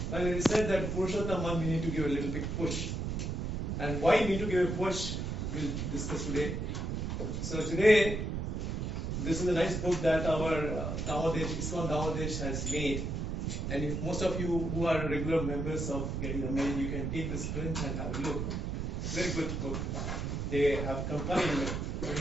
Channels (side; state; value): right; noise; rumble, 2 dB below the sound